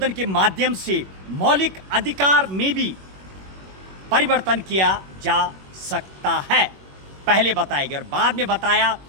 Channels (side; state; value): left; late; 21 ms